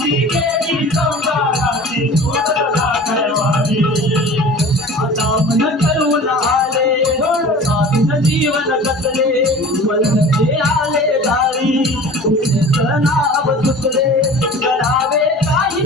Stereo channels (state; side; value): normal; both; correlation 0.41